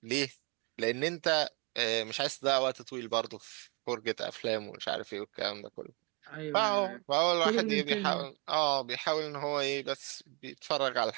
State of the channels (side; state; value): left; quieter; 29.6 dB